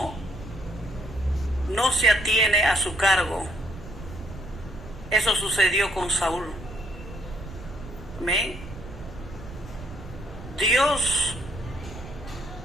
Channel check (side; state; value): right; noise; rumble, 13 dB below the sound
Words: se atiene a su cargo. Eso sucedió con Saúl. Amén. Dios